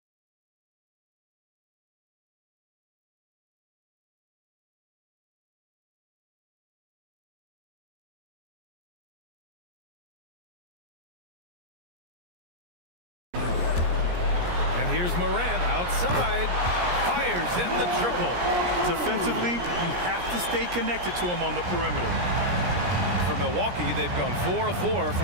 Here's Morant outside, fires in the triple. Defensively, you have to stay connected to him on the perimeter. For Milwaukee, they've gone 4 of 4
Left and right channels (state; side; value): late; left; 17 ms